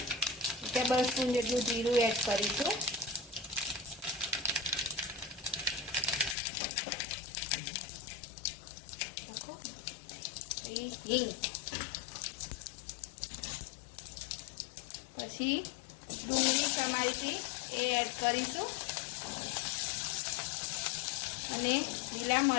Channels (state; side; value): drops out; right; at 6.4 s